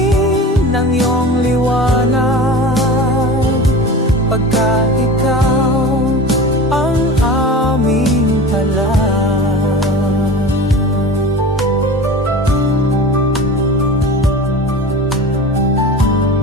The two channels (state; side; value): normal; both; correlation 0.34